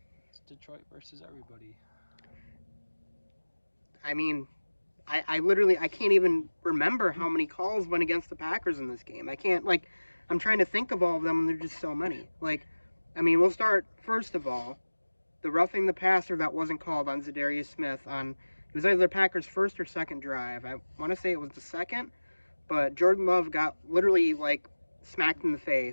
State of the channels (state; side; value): inverted; both; correlation -1.00